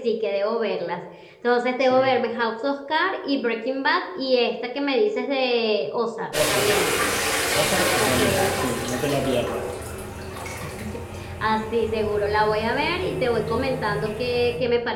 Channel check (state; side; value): identical; both; correlation 1.00